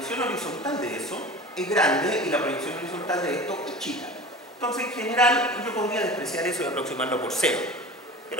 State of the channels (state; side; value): normal; both; correlation 0.35